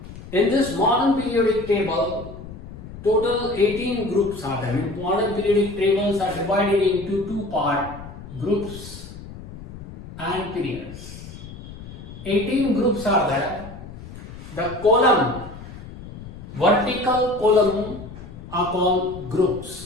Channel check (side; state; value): left; noise; rumble, 14 dB below the sound